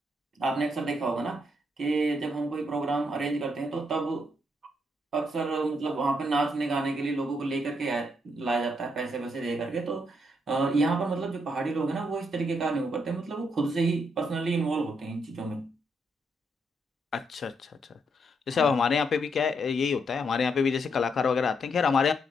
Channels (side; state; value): both; normal; correlation 0.77